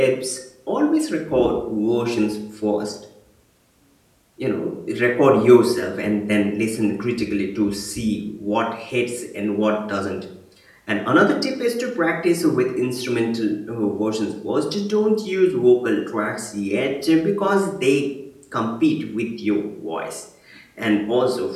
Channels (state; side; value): identical; both; correlation 1.00